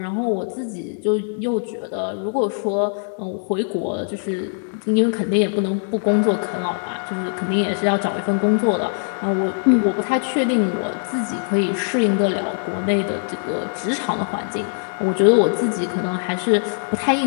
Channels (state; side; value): silent; right; 65 dB below the other